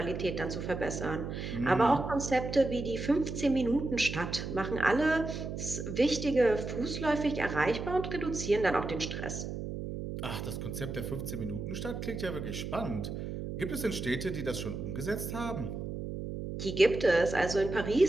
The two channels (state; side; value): noise; right; hum, 6 dB below the sound